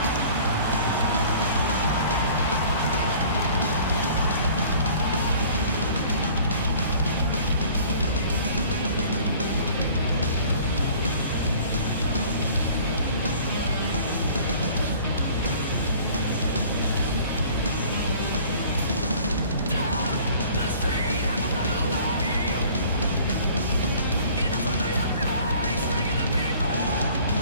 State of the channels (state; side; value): inverted; both; correlation -0.50